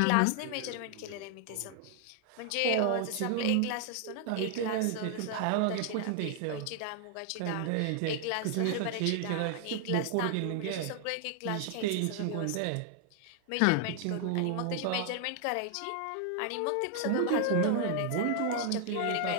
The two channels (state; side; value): different; both; correlation 0.00